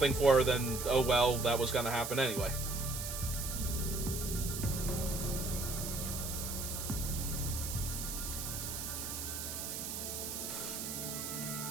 for her, then, oh well, that was going to happen anyway.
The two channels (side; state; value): right; noise; hiss, 5 dB below the sound